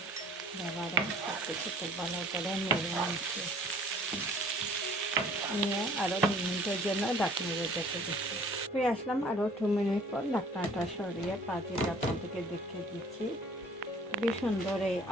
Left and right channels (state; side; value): normal; both; correlation 0.53